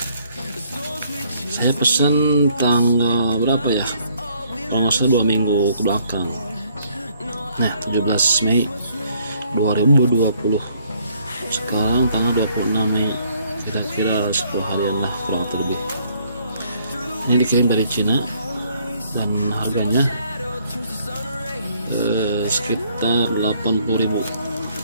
Saya pesan tanggal berapa ya? Kalau nggak salah 2 minggu ke belakang. Nah, 17 Mei 2020. Sekarang tanggal 26 Mei. Kira-kira 10 harian lah kurang terlebih. Ini dikirim dari Cina dan harganya sekitar 80.000.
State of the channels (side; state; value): both; inverted; correlation -0.66